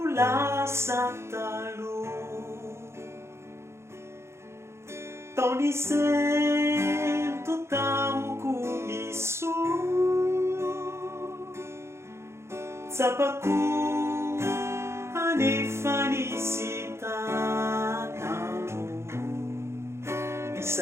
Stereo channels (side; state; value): left; late; 0.13 ms